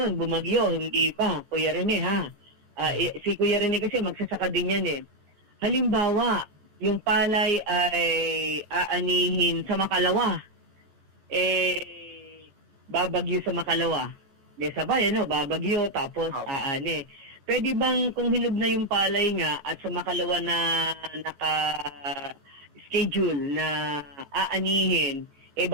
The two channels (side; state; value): left; late; 14 ms